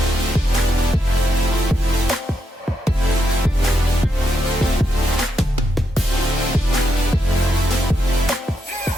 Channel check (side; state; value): both; normal; correlation 0.82